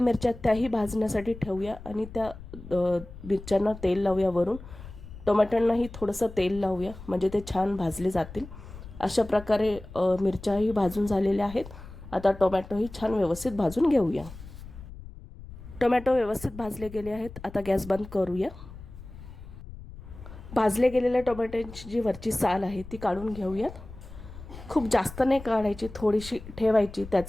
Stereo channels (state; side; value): noise; left; rumble, 15 dB below the sound